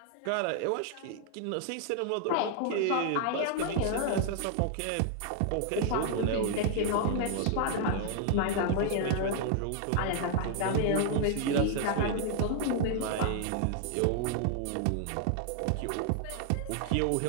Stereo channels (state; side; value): different; both; correlation 0.00